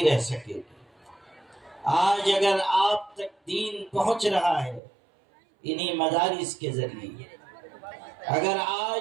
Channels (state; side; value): drops out; left; at 4.8 s